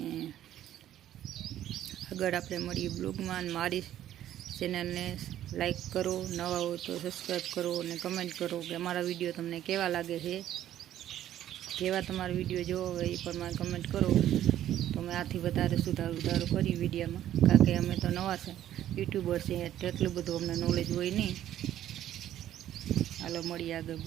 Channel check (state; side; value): quieter; left; 12.0 dB